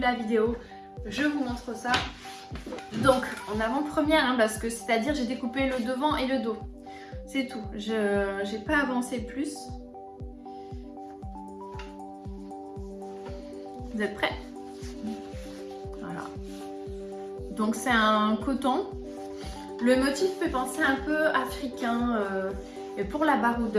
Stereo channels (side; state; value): both; identical; correlation 1.00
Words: la vidéo, je vous montre ça. Donc en avant-première, hein, parce que c'est-à-dire j'ai découpé le devant et le dos. C'est tout, j'ai pas avancé plus. Vous êtes prêts? Voilà. Donc c'est un coton. Le motif fait penser un peu africain. Et pour la